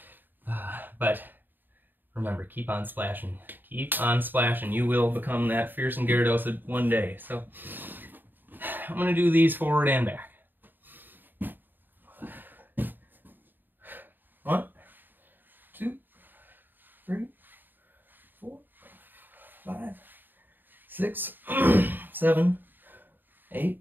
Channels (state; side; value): late; left; 0.092 ms